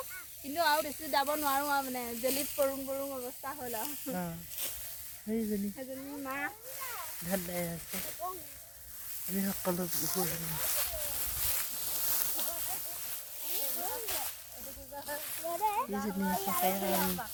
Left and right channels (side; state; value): both; identical; correlation 1.00